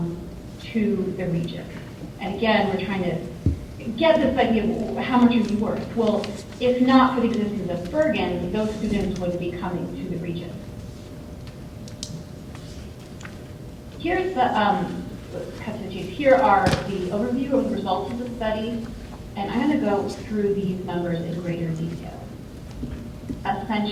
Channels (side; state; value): both; identical; correlation 1.00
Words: to the region. And again, we're trying to get this idea of how much are you worth? Well, if not for the existence of Bergen, those students would be coming to the region. Here's the, here are the overview of the results of the study, and I'm going to go through these numbers in greater detail.